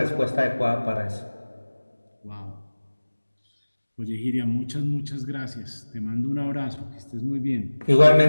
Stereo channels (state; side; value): inverted; both; correlation -1.00